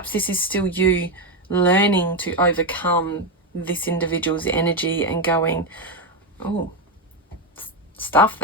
this is still you learning to overcome this individual's energy and going, oh, stuff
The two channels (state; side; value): normal; both; correlation 0.08